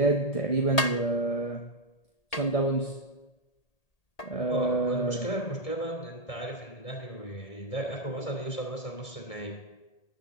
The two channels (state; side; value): late; right; 1.8 ms